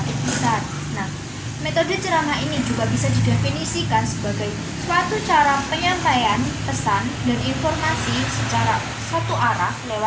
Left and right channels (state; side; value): identical; both; correlation 1.00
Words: besar. Nah, metode ceramah ini juga bisa didefinisikan sebagai suatu cara penyampaian pesan dan informasi secara satu arah